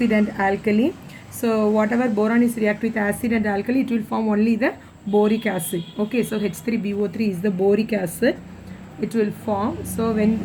and alkali. So whatever boron is react with acid and alkali, it will form only the boric acid. Okay, so H3BO3 is the boric acid. It will form. So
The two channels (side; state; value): both; identical; correlation 1.00